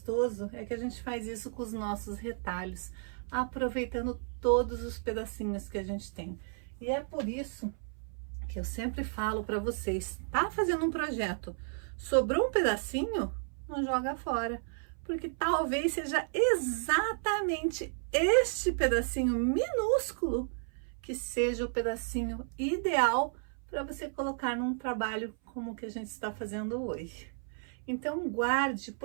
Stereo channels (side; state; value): left; silent; 56 dB below the other